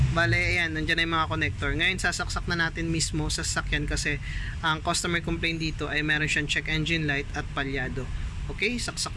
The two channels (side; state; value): both; identical; correlation 1.00